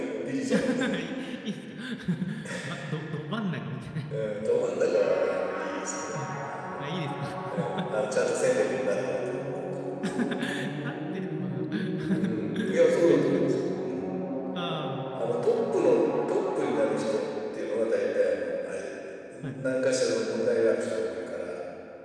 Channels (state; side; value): identical; both; correlation 1.00